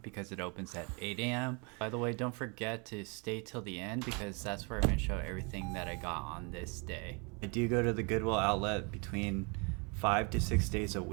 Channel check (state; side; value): quieter; left; 32.5 dB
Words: it opens at 8 a.m. By the way, don't forget to stay till the end because that's where I'm going to show everything that I got on this day. I do go to the Goodwill outlet between 5 to 6 days a